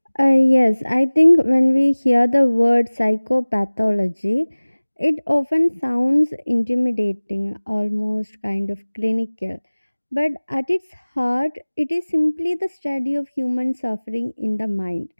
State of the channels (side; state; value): both; inverted; correlation -1.00